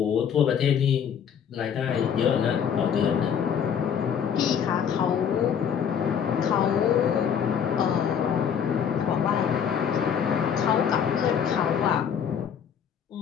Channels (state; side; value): quieter; right; 7.9 dB